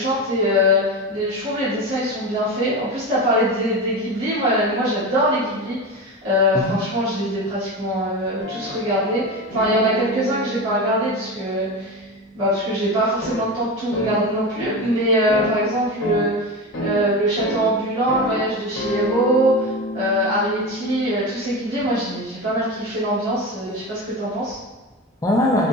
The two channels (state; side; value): normal; both; correlation 0.23